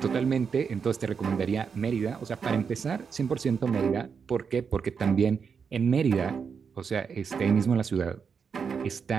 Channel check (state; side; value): quieter; left; 6.2 dB